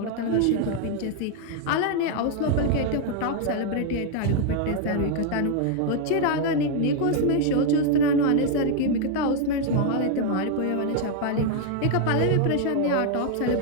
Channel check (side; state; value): both; different; correlation 0.00